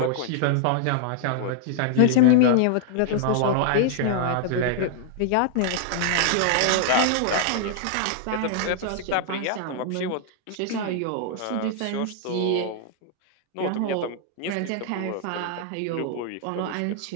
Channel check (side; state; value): both; different; correlation -0.01